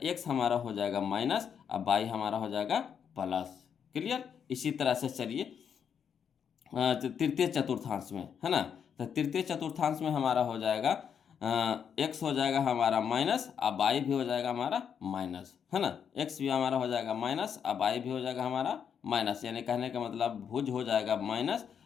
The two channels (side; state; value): right; quieter; 7.6 dB